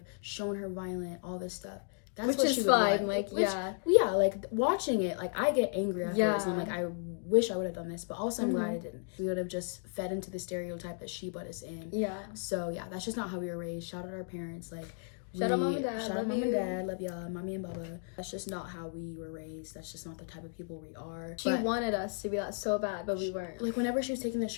shown her violent, all this stuff. That's Which what is she would fine, want. like, yeah. Yeah, like, watching it, like, I get angry afterwards. And I'm Yeah. like, I wish I would have done this. But also, I'm glad Mhm. I didn't. We would have just fed into the stereotype that she put us in. Yeah. So, yeah, that's just not how we were raised. Shout out our parents. Like, Shout out Mom and Dad. Shout out Love Mom you. and Dad. Love y'all. Mommy and Baba. That's just not how we were raised. That's just not the type of people we are. She But, wanted us to be that so bad, but we weren't. like, whenever she was taking the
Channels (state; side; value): silent; right; 55 dB below the other